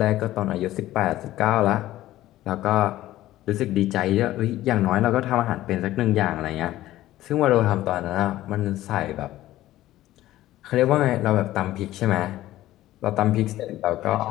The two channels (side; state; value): right; quieter; 15.0 dB